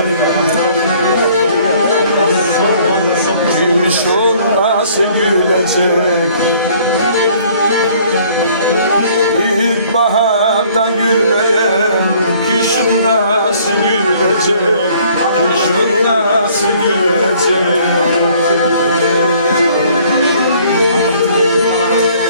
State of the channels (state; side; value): inverted; both; correlation -0.58